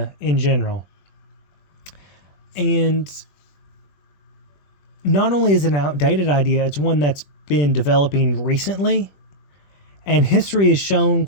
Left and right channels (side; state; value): right; late; 21 ms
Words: in general. And not only is it an outdated idea, it's one that's been developing recently, and history has shown